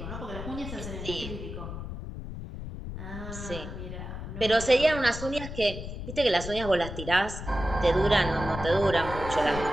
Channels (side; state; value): left; noise; rumble, 8 dB below the sound